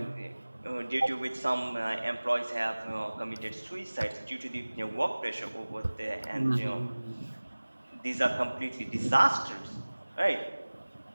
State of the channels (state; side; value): inverted; both; correlation -1.00